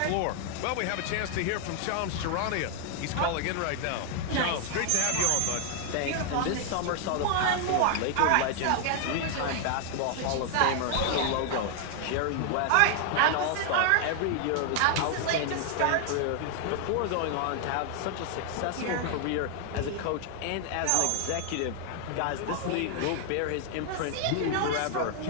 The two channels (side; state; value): both; different; correlation 0.00